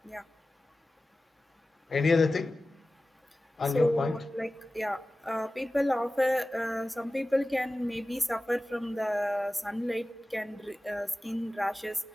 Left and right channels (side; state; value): both; normal; correlation 0.96